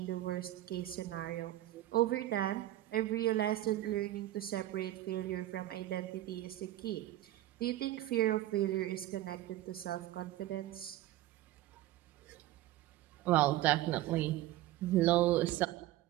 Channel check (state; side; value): quieter; left; 14.8 dB